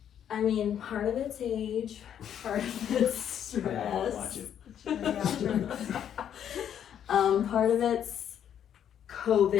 I mean, part of it's age, part of it's stress. Watch it. Part of it's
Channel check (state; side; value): quieter; right; 9.4 dB